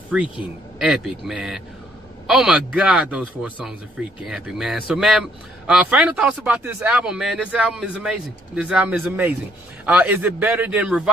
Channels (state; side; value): normal; both; correlation 0.67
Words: epic, man. Oh my God, those 4 songs are freaking epic, man. So, man, final thoughts about this album, man. This album is amazing. This album is amazing. Is it better than